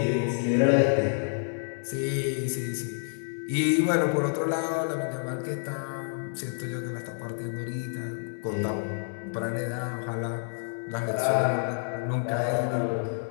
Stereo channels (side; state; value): right; silent; digital silence